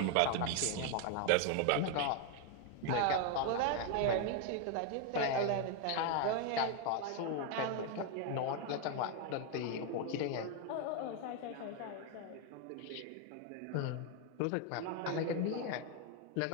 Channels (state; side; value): different; both; correlation 0.01